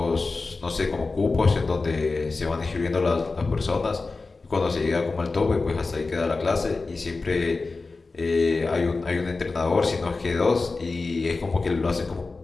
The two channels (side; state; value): right; quieter; 3.8 dB